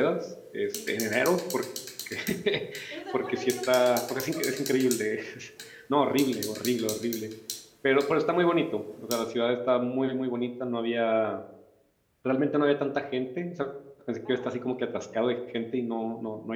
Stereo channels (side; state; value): both; identical; correlation 1.00